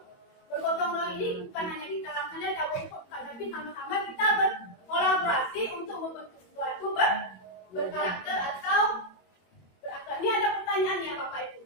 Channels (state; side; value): late; right; 22 ms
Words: Bergotong royong ini bukan hanya kita laksanakan cabut bukan, tapi sama-sama kita berkolaborasi untuk membentuk sesuatu berkarakter atau berakhlak. Ini ada pertanyaannya Bapak Ibu.